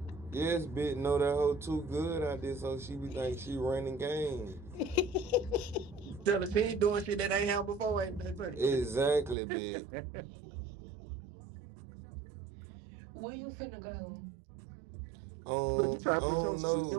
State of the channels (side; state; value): left; drops out; at 9.3 s